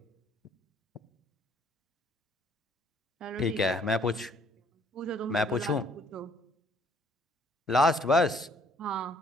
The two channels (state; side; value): normal; both; correlation 0.63